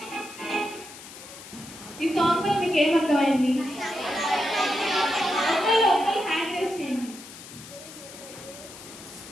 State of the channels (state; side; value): noise; left; hiss, 15 dB below the sound